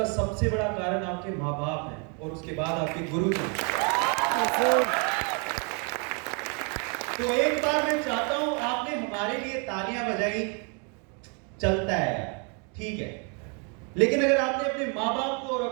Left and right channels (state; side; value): quieter; left; 36.7 dB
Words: सबसे बड़ा कारण आपके माँ बाप हैं और उसके बाद आपके गुरु जी। तो एक बार मैं चाहता हूं आपने हमारे लिए तालियां बजाई, चलता है ठीक है, लेकिन अगर आपने अपने माँ बाप को और